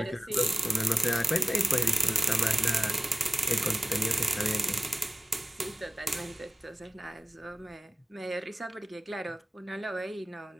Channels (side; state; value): both; normal; correlation 0.96